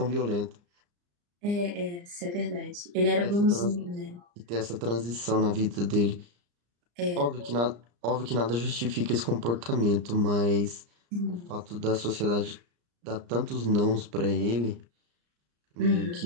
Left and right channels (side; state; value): left; late; 34 ms